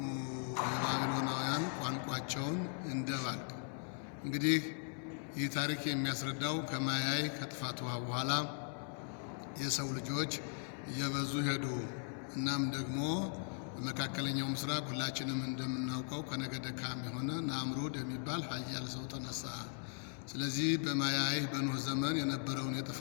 የባቢሎናውያን ቋንቋቸውን እንደባልቅ። እንግዲህ ይህ ታሪክ የሚያስረዳው ከማያይ ከጥፋት ውሃ በኋላ የሰው ልጆች እየበዙ ሄዱ። እናም ደግሞ በመካከለኛው ምስራቅ ሁላችንም እንደምናውቀው ከነገደ ካም የሆነ ናምሩድ የሚባል ኃያል ሰው ተነሳ። ስለዚህ በማያይ በኖህ ዘመን የነበረውን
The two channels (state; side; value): silent; right; 52 dB below the other